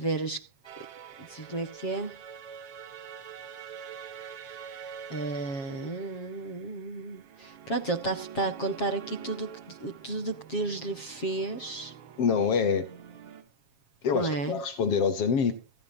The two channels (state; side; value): late; right; 7.4 ms